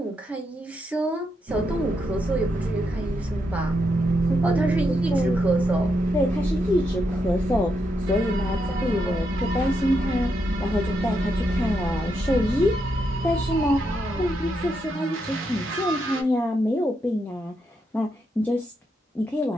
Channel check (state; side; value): normal; both; correlation 0.81